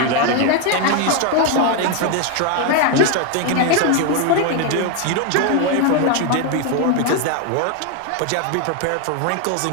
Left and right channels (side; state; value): both; different; correlation 0.01